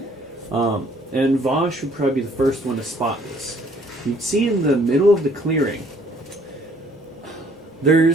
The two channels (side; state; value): both; normal; correlation 0.60